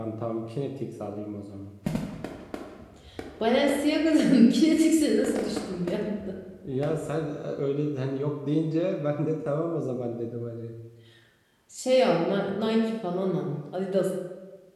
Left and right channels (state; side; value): identical; both; correlation 1.00